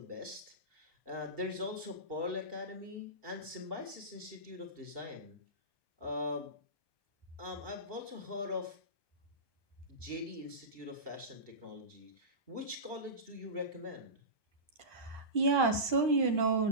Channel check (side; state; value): right; late; 1.2 ms